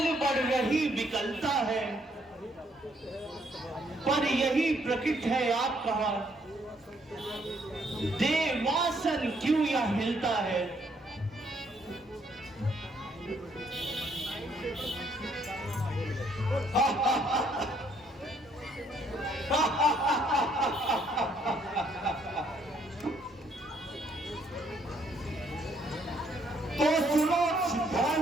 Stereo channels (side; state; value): both; normal; correlation 0.69